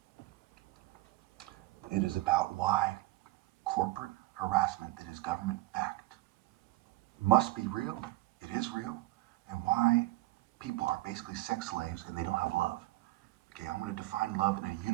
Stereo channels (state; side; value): quieter; left; 18.3 dB